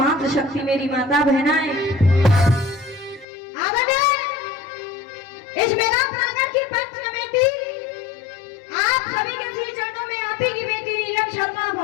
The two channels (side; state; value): right; drops out; at 3.2 s